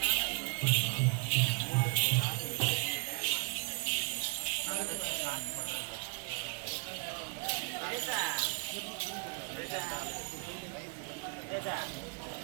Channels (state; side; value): quieter; left; 37.1 dB